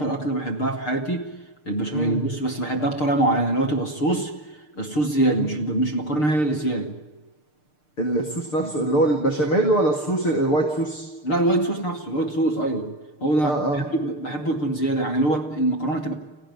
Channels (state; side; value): late; right; 6.7 ms